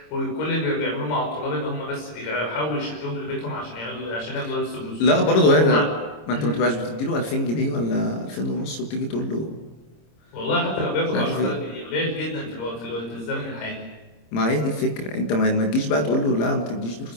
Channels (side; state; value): right; late; 26 ms